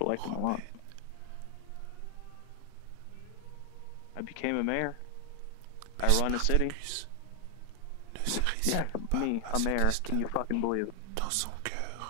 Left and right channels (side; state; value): both; different; correlation 0.00